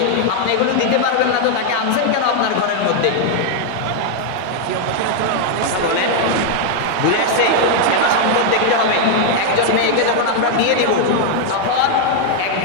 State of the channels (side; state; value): both; different; correlation 0.00